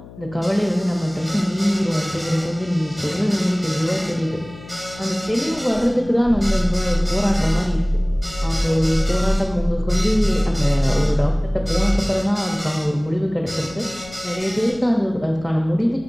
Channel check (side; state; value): left; noise; hum, 18 dB below the sound